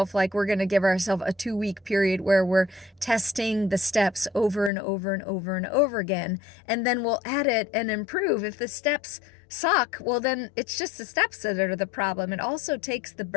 like, we're going to give ourselves a 2-week period where we're testing the steps over and over and over and over again. And then we'll edit and improve. If the steps suck, well, then it's just the steps that are the problem. It also takes the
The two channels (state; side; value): drops out; right; at 4.7 s